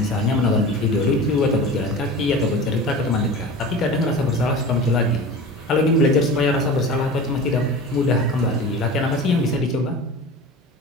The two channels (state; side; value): normal; both; correlation 0.34